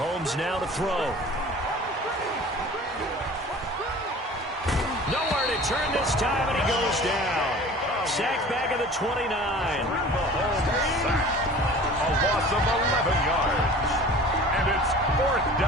now to throw. Nowhere to turn this time, and he goes down. Sacked back at the 29. Mahomes sacked. A loss of 11 yards. And it's fourth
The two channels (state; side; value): normal; both; correlation 0.43